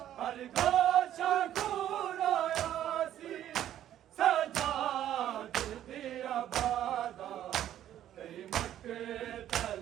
हर गोशा को रोया सी सजाद दिया बादा कई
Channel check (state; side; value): quieter; left; 11.6 dB